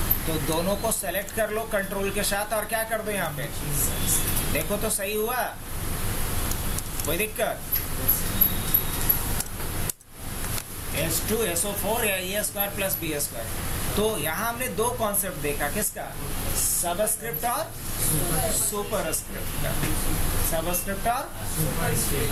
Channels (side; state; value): both; identical; correlation 1.00